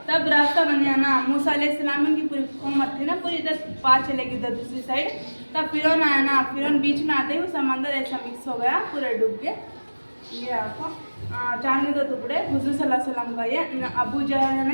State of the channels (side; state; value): both; inverted; correlation -1.00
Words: तब रास्ता बन गया ना, मूसा अलैहिस्सलाम की पूरी उम्मत थी ना, पूरी इधर पार चलेगी उधर दूसरी साइड। तब फिरौन आया ना, फिरौन बीच में आते ही वो समंदर ऐसा मिक्स हो गया, पूरा डूब गया। ये आपको चांद के दो टुकड़े हुजूर सल्लल्लाहु अलैहि वसल्लम का। ये अबू जहल